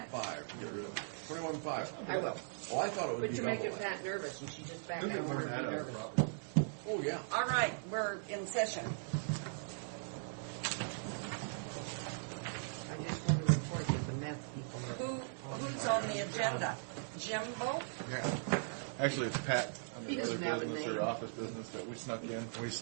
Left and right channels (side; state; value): left; silent; digital silence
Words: 21.5. I will. Oh, I thought it was. But you're making Pat nervous, and she's just back. I don't want her to be nervous. Oh, yeah. All right, we're in session. I just want to report that the meth people are Who's on on the the job. agenda? Jimbo? Yeah. Actually, it's Pat. He doesn't have a name. Office business that we snuck in. We